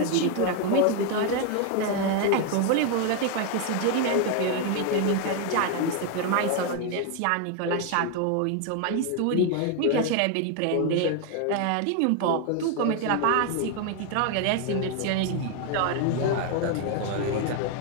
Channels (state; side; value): different; both; correlation 0.01